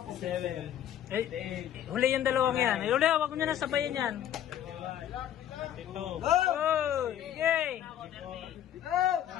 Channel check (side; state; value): right; quieter; 10.7 dB